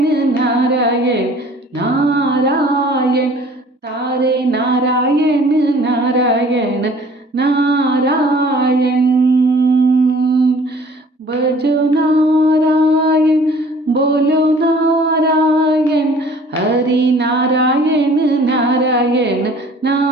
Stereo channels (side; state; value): both; normal; correlation 0.52